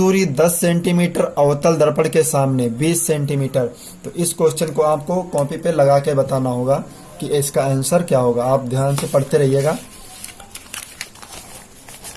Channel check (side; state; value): both; identical; correlation 1.00